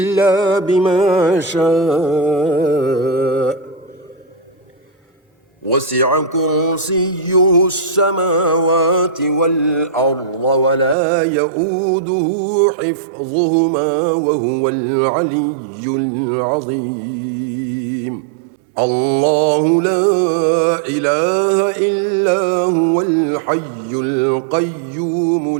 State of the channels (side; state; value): left; drops out; at 11.0 s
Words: بما شاء وسع كرسيه السماوات والأرض ولا يؤوده حفظهما وهو العلي العظيم الله لا إله إلا هو الحي القيوم